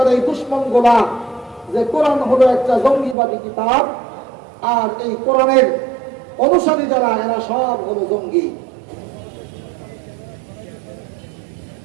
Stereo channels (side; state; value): left; drops out; at 3.2 s